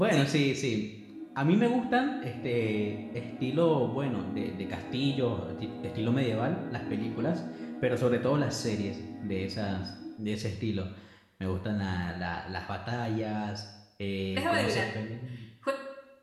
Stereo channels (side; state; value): both; identical; correlation 1.00